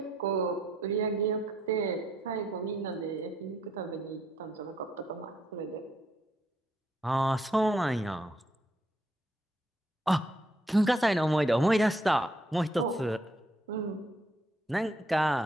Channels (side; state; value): both; normal; correlation 0.73